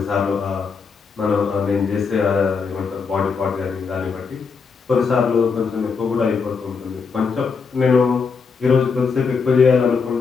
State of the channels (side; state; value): right; quieter; 5.3 dB